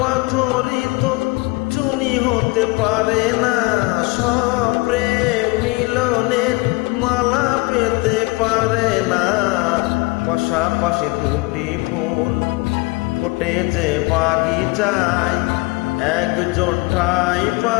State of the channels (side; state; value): right; quieter; 24.8 dB